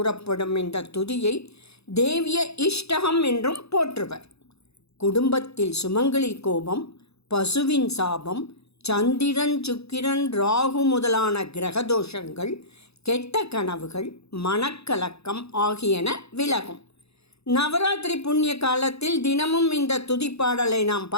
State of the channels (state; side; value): late; right; 0.79 ms